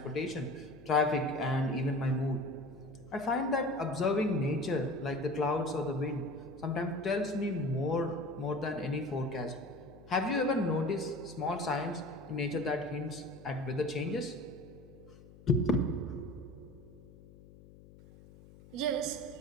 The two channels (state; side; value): noise; left; hum, 21 dB below the sound